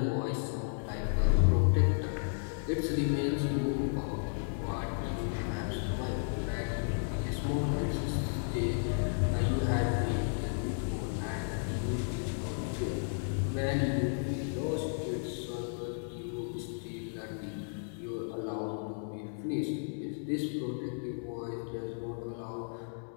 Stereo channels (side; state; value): right; silent; 55 dB below the other